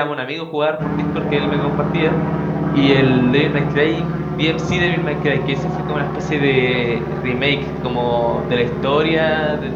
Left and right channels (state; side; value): identical; both; correlation 1.00